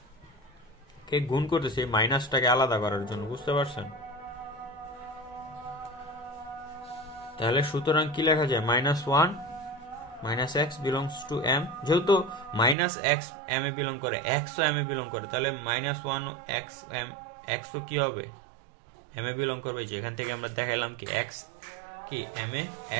কে গুণ করতেছি মাইনাসটাকে আলাদা করার জন্য, বুঝতে পারছেন? তাহলে সুতরাং কি লেখা যায়? -1 minus x belongs to m, যেহেতু মাইনাস এক্স এম এ বিলং করে, এক্স ও এম এ বিলং করে, তাহলে -1 এক্স এম, এক্স ও কি হবে? এম এ বিলং করবে। যেখান থেকে আমরা দেখাইলাম কি এক্স কি এম এ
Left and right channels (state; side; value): drops out; left; at 12.8 s